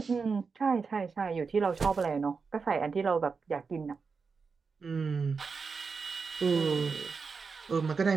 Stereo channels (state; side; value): quieter; left; 5.0 dB